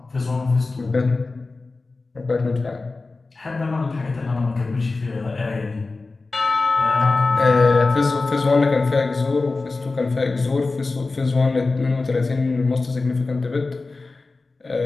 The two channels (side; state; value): right; quieter; 3.6 dB